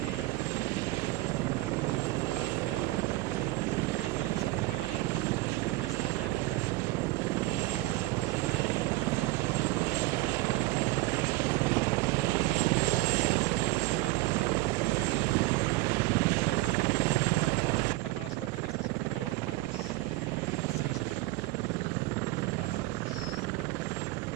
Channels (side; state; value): left; quieter; 19.4 dB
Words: ella me imagino que es cuando os dais cuenta de que eso está peor de lo que creíais. Ahí fue donde se rompió la llanta, entonces la llanta rompió el depósito de aceite que lleva el amortiguador, rompió el amortiguador, nos quedamos sin amortiguación delantera izquierda, tuvimos que cambiar el neumático y continuar. Lo que pasa es que con tal mala suerte que esto sucedió a los 6-7 kilómetros de empezar el tramo, ¿no? Y nos faltaban unos 70.